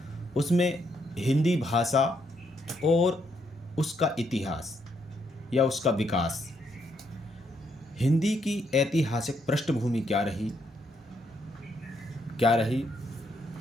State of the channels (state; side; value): normal; both; correlation 0.75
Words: उसमें हिंदी भाषा और उसका इतिहास या उसका विकास, हिंदी की ऐतिहासिक पृष्ठभूमि क्या रही